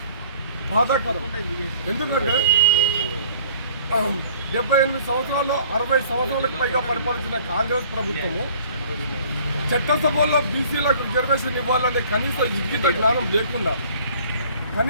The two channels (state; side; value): inverted; both; correlation -0.54